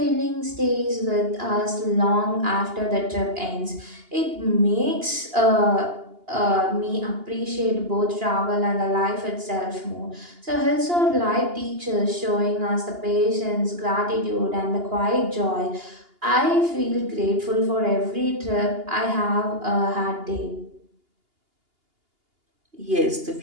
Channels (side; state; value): left; late; 2.8 ms